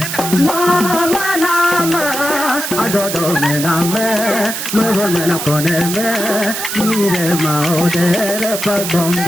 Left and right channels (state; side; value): noise; right; hiss, 5 dB below the sound